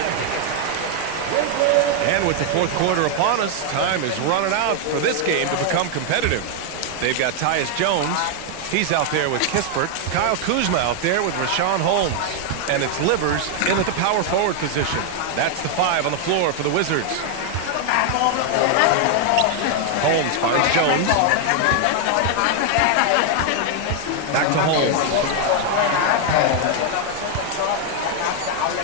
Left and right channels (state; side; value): different; both; correlation 0.00